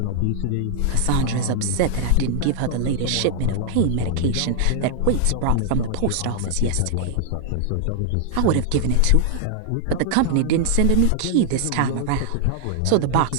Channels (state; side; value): different; both; correlation 0.00